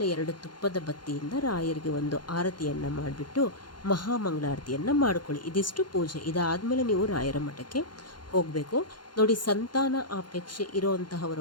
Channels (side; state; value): right; late; 0.71 ms